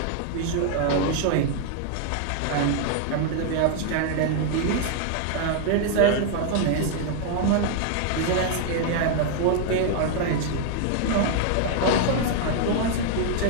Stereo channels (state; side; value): different; both; correlation 0.00